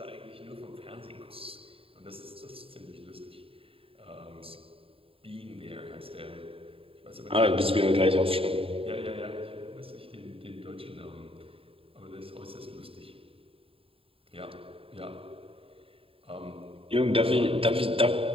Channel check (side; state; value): left; late; 0.27 ms